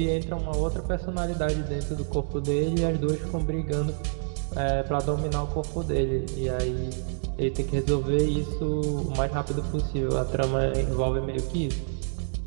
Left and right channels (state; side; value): silent; left; digital silence